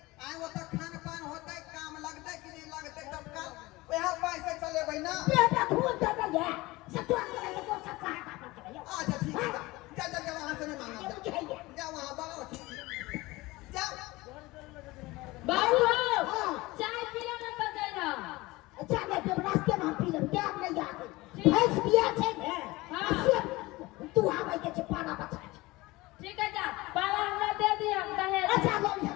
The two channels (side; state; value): right; quieter; 20.8 dB